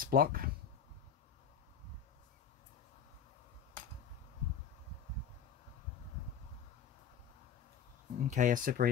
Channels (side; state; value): right; quieter; 7.5 dB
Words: block. Okay, I